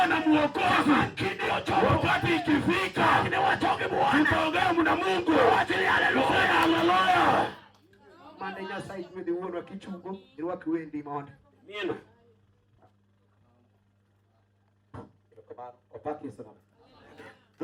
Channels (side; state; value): both; identical; correlation 1.00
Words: na Mwokozi. Kidio choko. Wakati ikifika. Ni watoke Bwana. Tutaongea na Mungu. Wachili haleluya. Haleluya. Manda Nyasaye mwede uono kichugo. Irwa kiwendi monde. Nina. Opaki sana.